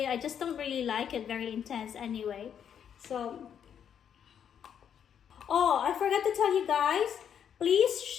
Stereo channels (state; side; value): quieter; right; 8.5 dB